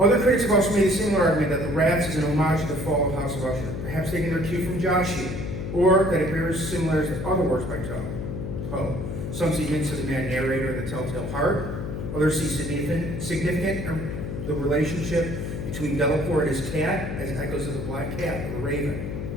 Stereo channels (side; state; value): left; noise; hum, 5 dB below the sound